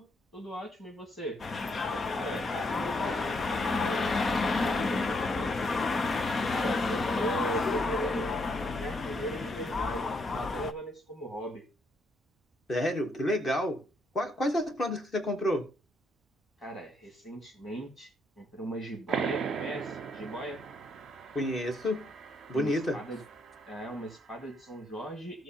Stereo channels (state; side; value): normal; both; correlation 0.74